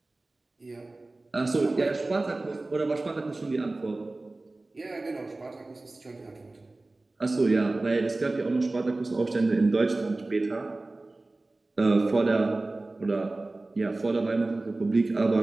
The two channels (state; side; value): quieter; left; 3.0 dB